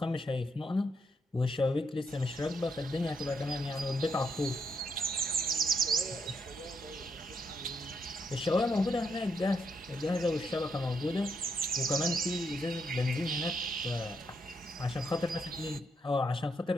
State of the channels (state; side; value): normal; both; correlation 0.77